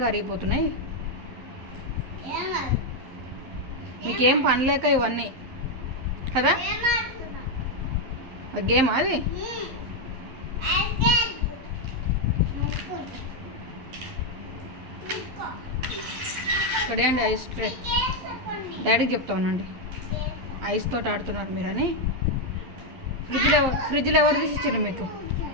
కరిగిపోతున్నాయి. మీకేం పని లేక ఇవన్నీ కదా? గేమ్ అది. ఇక్కడే అండి ఐస్ ట్రే. డాడీకి చెప్తా ఉన్నాండి, ఐస్ తోటి ఆడుతున్నారు మీరని. ఫ్రిడ్జ్లో ఎవరు తీసి ఇచ్చారు మీకు?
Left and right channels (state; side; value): late; left; 11 ms